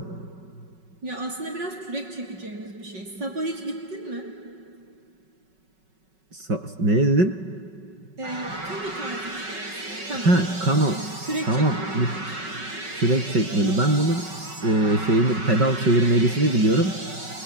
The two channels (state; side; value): late; left; 5.3 ms